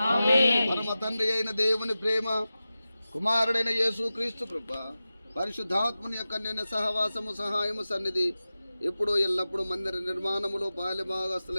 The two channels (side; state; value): both; inverted; correlation -0.94